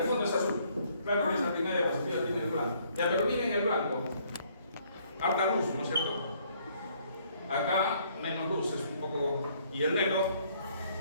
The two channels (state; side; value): inverted; both; correlation -0.65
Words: fondo es azul. Claro que esa primera diapositiva tiene el blanco. Ya, pero miren el blanco. Harta luz, ¿no es cierto? Acá menos luz, es un poco. Y el negro,